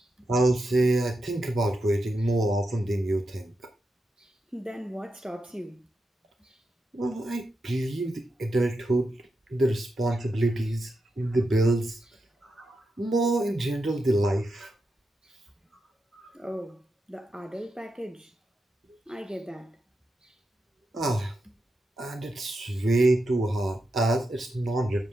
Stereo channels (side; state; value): both; normal; correlation 0.87